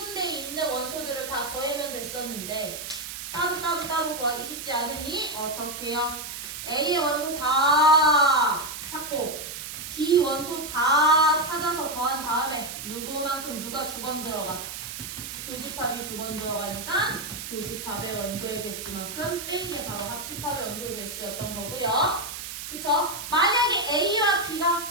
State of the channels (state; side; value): noise; right; hiss, 8 dB below the sound